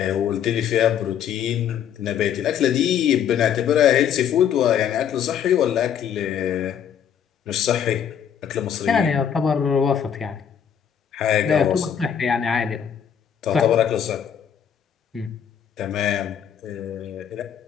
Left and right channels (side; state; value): right; quieter; 8.6 dB